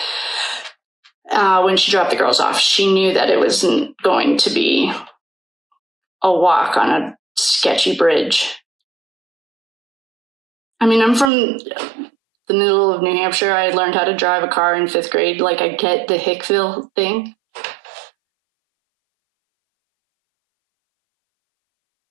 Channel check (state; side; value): drops out; left; at 11.3 s